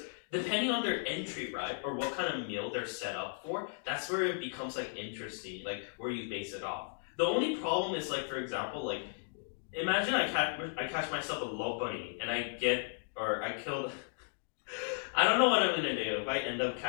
depending on their entry, right, or what kind of meal they're set up for, that's where it becomes like interesting, like where you base it off. The only problem is like, for example, like imagine I catch myself a Lopunny and I kill. I don't know what I'm gonna do. If I end up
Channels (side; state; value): right; silent; digital silence